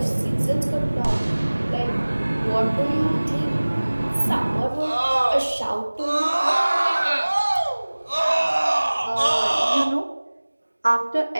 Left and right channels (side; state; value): both; inverted; correlation -1.00